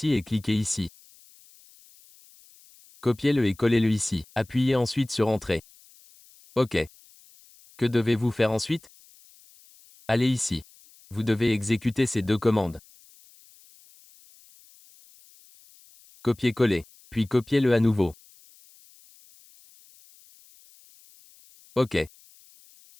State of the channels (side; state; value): left; noise; hiss, 27 dB below the sound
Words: et cliquer ici. Copiez-le et collez-le ici. Appuyez ensuite sur Entrée. OK. Que devez-vous faire ensuite? Allez ici. Vous devez exécuter ces deux commandes. Copier-coller. Puis copiez-le à nouveau. OK.